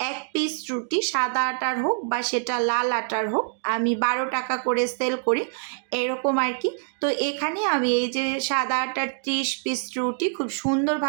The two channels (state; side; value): silent; left; 61 dB below the other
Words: 1 পিস রুটি সাদা আটার হোক বা সেটা লাল আটার হোক, আমি 12 টাকা করে সেল করি এরকম আর কি। তো এখানে আমি এই যে সাদা আটার 30 পিস রুটি খুব